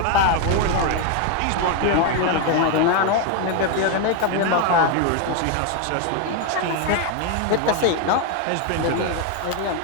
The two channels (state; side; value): different; both; correlation 0.01